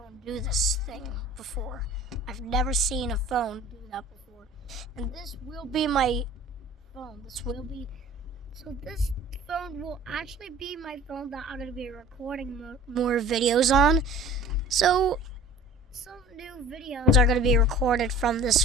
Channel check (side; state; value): both; normal; correlation 0.45